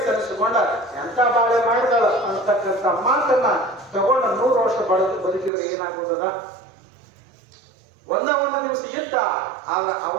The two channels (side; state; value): left; drops out; at 5.5 s